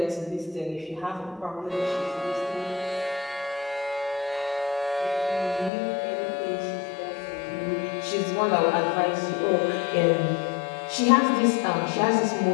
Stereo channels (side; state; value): right; drops out; at 5.7 s